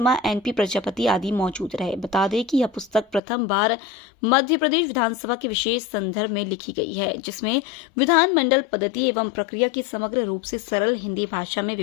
एनपी प्रजापति आदि मौजूद रहे। बता दें कि यह पुस्तक प्रथम बार मध्य प्रदेश विधानसभा के विशेष संदर्भ में लिखी गई है, जिसमें विधानमंडल पद्धति एवं प्रक्रिया की समग्र रूप से सरल हिंदी भाषा में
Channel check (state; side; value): drops out; right; at 3.2 s